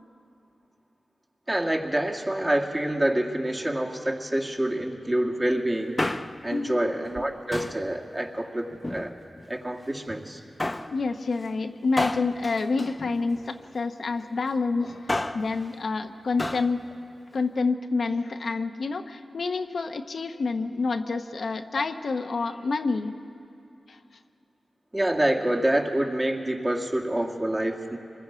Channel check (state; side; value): normal; both; correlation 0.95